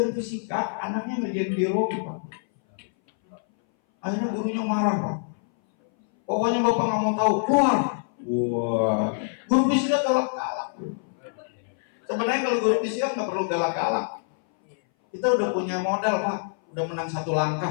fisika, anaknya ngerjain biologi Pak. Akhirnya gurunya marah Pak. Pokoknya Bapak nggak mau tahu, keluar. Wah, guru fisika galak-galak. Sebenarnya kalau guru fisika nggak perlu galak-galak. Kita udah punya modal Pak, udah menang 1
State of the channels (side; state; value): right; silent; 59 dB below the other